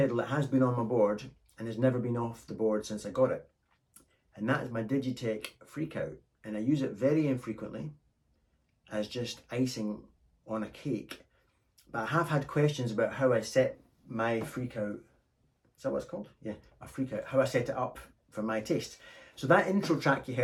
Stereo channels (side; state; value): both; identical; correlation 1.00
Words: that has been on my board and has never been off the board since I got it. And that is my Digitech Freqout. And I use it very infrequently as just icing on a cake. But I have had questions about how I set my Freqout. Is that what it's called? Yeah, a Freqout. How I set it up for my taste. So that intro track you